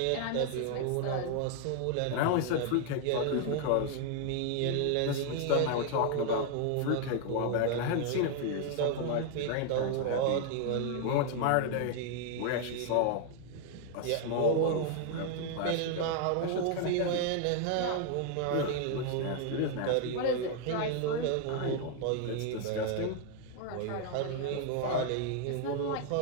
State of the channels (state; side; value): different; both; correlation 0.00